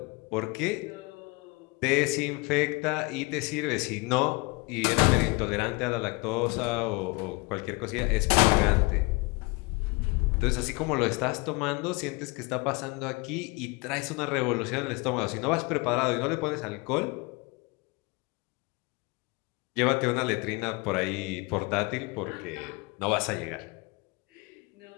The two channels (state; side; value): quieter; right; 26.4 dB